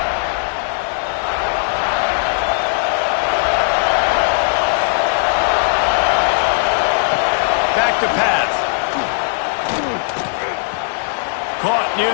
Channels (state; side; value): silent; right; digital silence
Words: Back to pass. Caught near